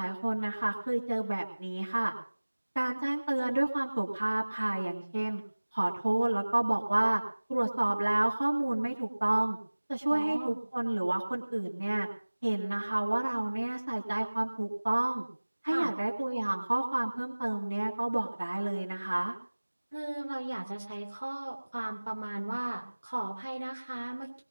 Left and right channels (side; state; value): both; inverted; correlation -1.00